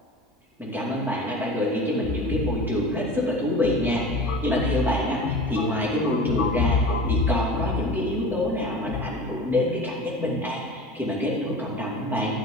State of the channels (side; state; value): both; normal; correlation 0.36